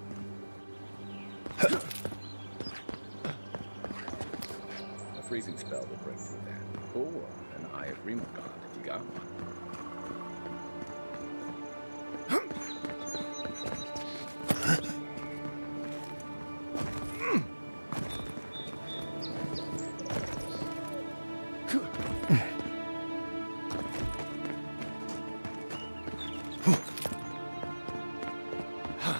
A freezing spell will break through that. Or an Eye of Remogod if you got one.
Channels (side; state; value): both; inverted; correlation -1.00